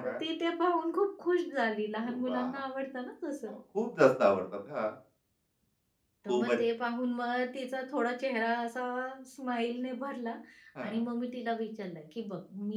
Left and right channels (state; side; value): identical; both; correlation 1.00